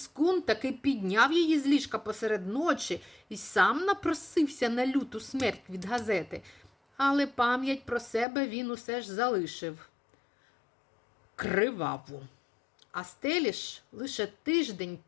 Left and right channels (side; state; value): right; drops out; at 8.2 s